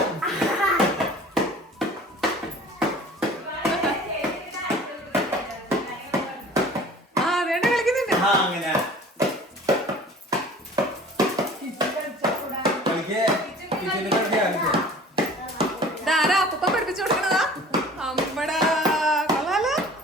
അങ്ങനെ ഇതാരാ അപ്പൂപ്പ പഠിപ്പിച്ചു കൊടുക്കണതാ? അമ്മടാ കൊള്ളാലോ.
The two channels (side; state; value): both; normal; correlation 0.46